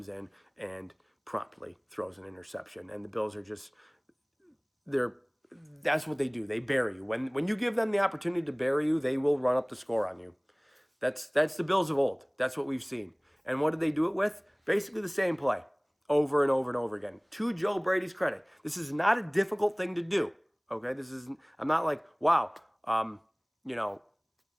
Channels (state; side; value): identical; both; correlation 1.00